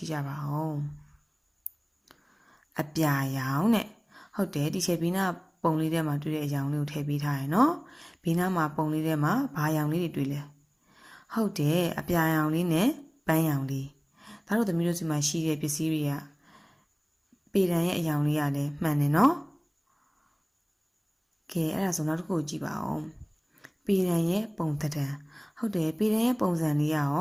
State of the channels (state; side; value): identical; both; correlation 1.00